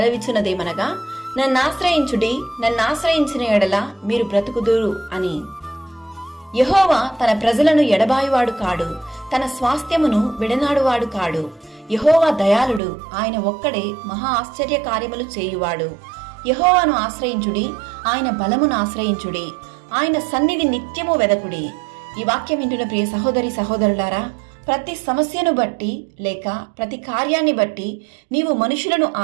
నన్నాశ్రయించుడి, నన్నాశ్రయించిన ఎడల మీరు బ్రతుకుదురు అని. యెహోవా తన ప్రజలను ఎడబాయువాడు కాడు, తన స్వాస్థ్యమును విడనాడువాడు కాడు. యెహోవా దయాళుడు, ఆయన ఒక్కడే మహా ఆశ్చర్య కార్యములు చేయువాడు. యెహోవాను ఆశ్రయించుడి, ఆయన బలమును ఆశ్రయించుడి, ఆయన సన్నిధి నిత్యము వెదకుడి. ఈ వాక్యం వింటున్న ప్రియ సహోదరి సహోదరులారా, ప్రతి సమస్యను బట్టి లేక ప్రతి కార్యాన్ని బట్టి నీవు మనుషులను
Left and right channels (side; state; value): left; drops out; at 12.8 s